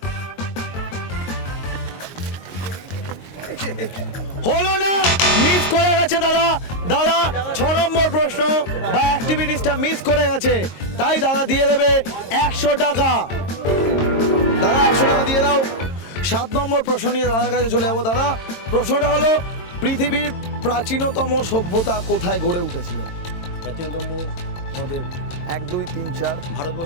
হলো না, মিস করে গেছে দাদা। দাদা 6 নম্বর প্রশ্ন বা অ্যাক্টিভিটিসটা মিস করে গেছে, তাই দাদা দিয়ে দেবে 100 টাকা। দাদা 100 টাকা দিয়ে দাও। 7 নম্বর প্রশ্ন নিয়ে দাদার কাছে চলে যাবো। দাদা, প্রশ্নটা হলো, পৃথিবীর প্রাচীনতম সভ্যতা কোথায় গড়ে উঠেছিল? প্রাচীনতম আমাদের 1 2 3 4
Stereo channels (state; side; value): late; right; 22 ms